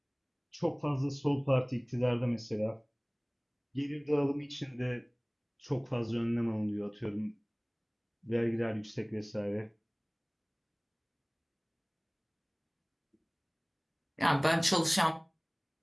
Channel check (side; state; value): both; identical; correlation 1.00